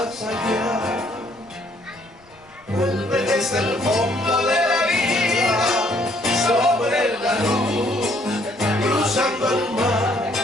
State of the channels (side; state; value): left; noise; rumble, 29 dB below the sound